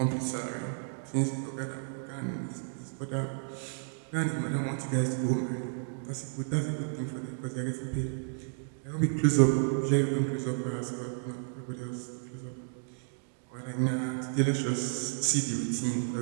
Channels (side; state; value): left; silent; digital silence